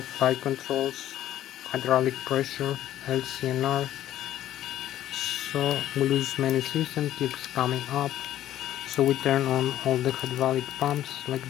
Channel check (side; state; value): right; quieter; 12.6 dB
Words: flight controls, hydraulic pressure, LCNR. So we lose many systems. Keeps coming up. So we turn on all the hydraulic pumps like